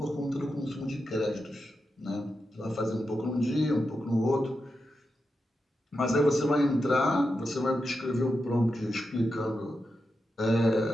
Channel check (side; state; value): both; normal; correlation 0.88